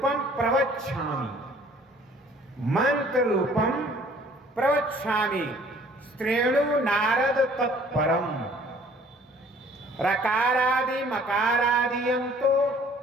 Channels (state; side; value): normal; both; correlation 0.55